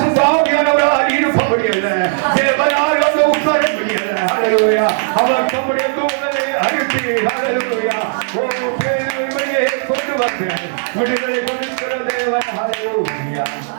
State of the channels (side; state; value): left; silent; 61 dB below the other